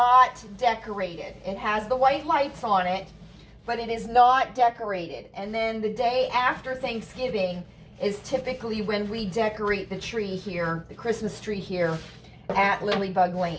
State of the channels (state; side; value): identical; both; correlation 1.00